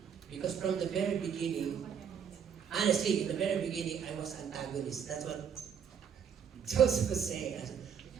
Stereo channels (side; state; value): left; quieter; 7.7 dB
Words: Because from the very beginning, honestly, in the very beginning, I was antagonist. That's what Joseph was saying.